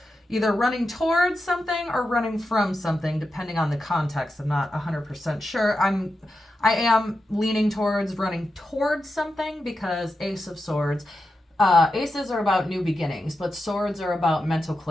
either running towards something or running from something, depending on the context. I'm not 100% sure. I am leaning towards running towards something because Ace of Swords, aces are about new beginnings, but swords are about mental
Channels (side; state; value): both; normal; correlation 0.89